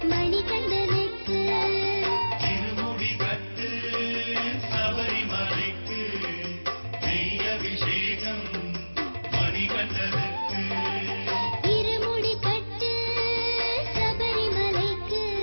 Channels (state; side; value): inverted; both; correlation -1.00